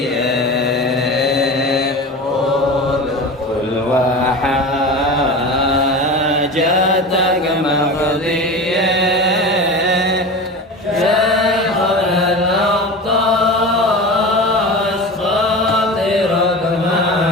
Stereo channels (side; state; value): both; normal; correlation 0.30